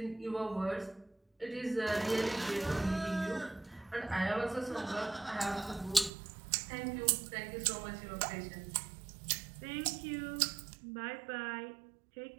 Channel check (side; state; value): left; drops out; at 6.1 s